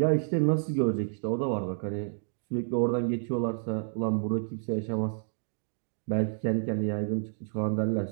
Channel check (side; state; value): left; silent; digital silence